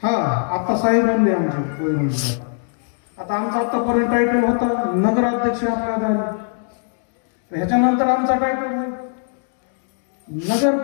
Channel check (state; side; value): silent; right; 65 dB below the other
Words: बाबासाहेब म्हणले आमचे वैरण. आता आमचा आतापर्यंत टायटल होता नगराध्यक्ष आपल्या दारी, ह्याच्यानंतर आमचा टायटल आहे